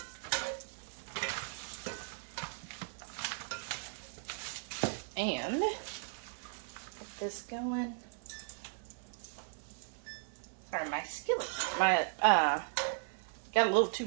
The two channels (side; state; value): left; silent; 53 dB below the other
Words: And get this going. Sorry, my skillet, got a little too